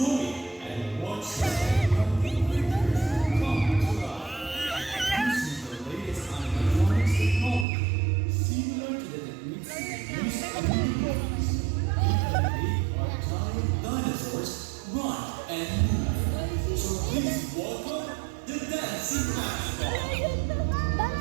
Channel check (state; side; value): drops out; left; at 7.7 s